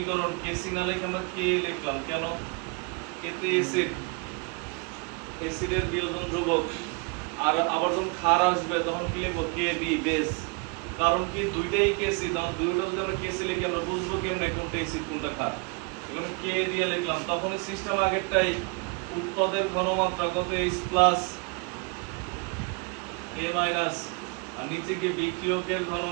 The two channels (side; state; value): left; quieter; 32.1 dB